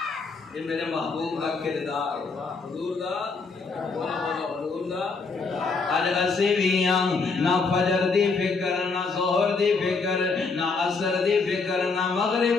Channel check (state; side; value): quieter; right; 4.4 dB